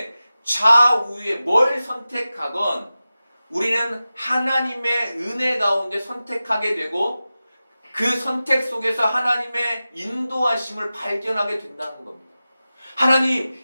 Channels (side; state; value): both; inverted; correlation -0.95